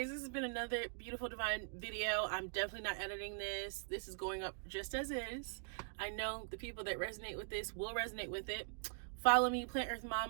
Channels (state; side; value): silent; left; digital silence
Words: this has been another beautiful divine video. I'm definitely not editing this. This is going up just as is. I know the people that resonate with this will resonate with it. Follow me, Plant Earth